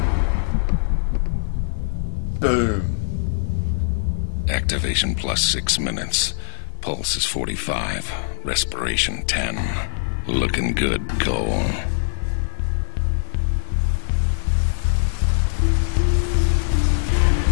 Boom. Activation plus 6 minutes. Pulse is 45. Respiration 10. Looking good, Cole.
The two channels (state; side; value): silent; right; 61 dB below the other